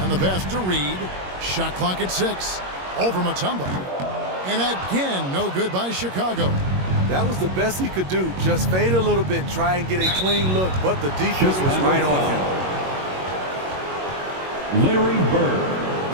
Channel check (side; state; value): left; late; 21 ms